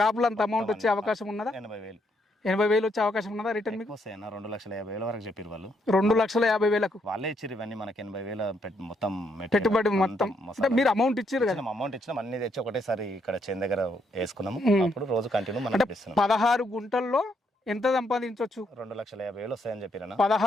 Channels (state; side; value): normal; both; correlation 0.75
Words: లో అంత అమౌంట్ వచ్చే అవకాశం ఉన్నదా? 80,000 వచ్చే అవకాశం ఉన్నదా రిటర్న్ మీకు? వస్తాయన్న. 2,50,000 వరకు చెప్పారు వాళ్ళు. 2,50,000 వాళ్ళే ఇచ్చారు ఇవన్నీ మనకి. 80,000 మొత్తం పెట్టుబడి మొత్తం. మీరు అమౌంట్ ఇచ్చారు కదా? అమౌంట్ ఇచ్చినాం, అన్ని తెచ్చి ఒకటేసారి ఇక్కడ చేను దగ్గర వేసుకున్నాము. అప్పుడు రోజు కంటిన్యూ మనం 16 గుంటల్లో ఎంత సంపాదించవచ్చు? 2,50,000 వస్తాయని చెప్పిరన్న.